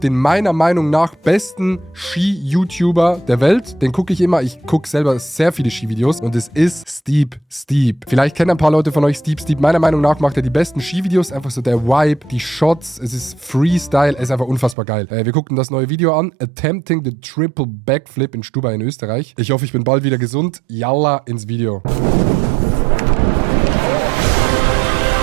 meiner Meinung nach besten Ski-YouTuber der Welt. Den gucke ich immer. Ich gucke selber sehr viele Skivideos und es ist Steep. Vielleicht kennen ein paar Leute von euch Steep. Meiner Meinung nach macht er die besten Skivideos. Einfach so der Vibe, die Shots, es ist Freestyle, es ist einfach unfassbar geil. Wir guckten das neue Video an. Attempting the Triple Backflip in Stubai in Österreich. Ich hoffe, ich bin bald wieder gesund. Yalla ins Video.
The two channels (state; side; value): drops out; left; at 14.8 s